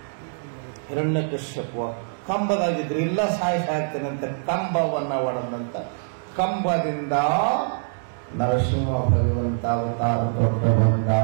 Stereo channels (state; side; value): silent; left; digital silence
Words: ಹಿರಣ್ಯಕಶ್ಯಪ ಕಂಬದಾಗಿದ್ರು, ಇಲ್ಲ ಸಾಯ್ತೇನಂತ ಕಂಬವನ್ನ ಒಡದಂತ. ಕಂಬದಿಂದ ನರಸಿಂಹ ಭಗವಂತ ಅವತಾರ ದೊಡ್ಡ ಬಂದ.